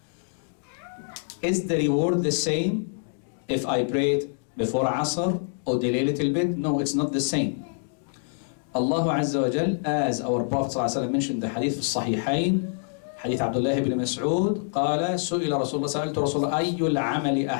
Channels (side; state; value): right; silent; digital silence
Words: is the reward the same if I prayed before Asr or delay a little bit? No, it's not the same. Allah Azza wa Jal, as our Prophet ﷺ mentioned the hadith of Sahihain, حديث عبد الله بن مسعود قال سئل رسول الله سألت رسول الله أي العمل